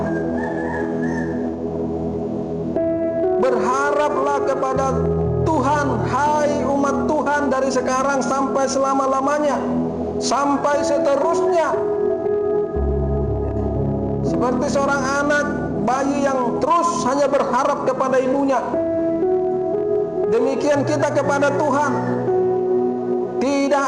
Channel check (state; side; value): identical; both; correlation 1.00